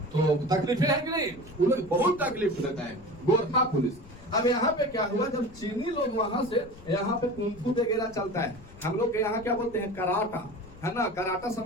तो तकलीफें है कि नहीं? वो लोग बहुत तकलीफ देता है गोरखा पुलिस। अब यहाँ पे क्या हुआ, जब चीनी लोग वहां से, यहाँ पे कुंफू वगैरह चलता है, हम लोग के यहाँ क्या बोलते हैं? कराटा, है ना। कराटा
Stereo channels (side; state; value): left; noise; rumble, 20 dB below the sound